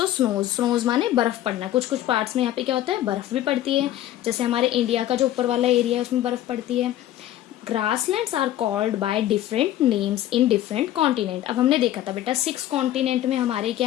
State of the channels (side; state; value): right; quieter; 13.3 dB